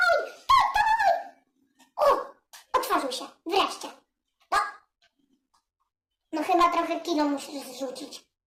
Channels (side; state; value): both; identical; correlation 1.00